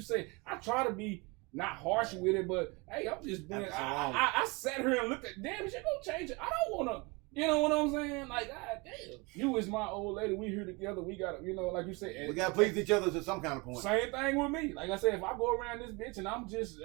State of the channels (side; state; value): left; quieter; 26.4 dB